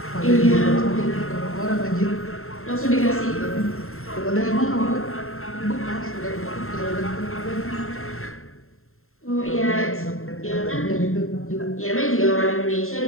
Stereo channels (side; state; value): right; late; 0.62 ms